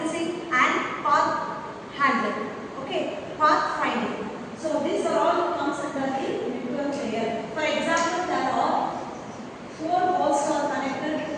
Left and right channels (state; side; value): identical; both; correlation 1.00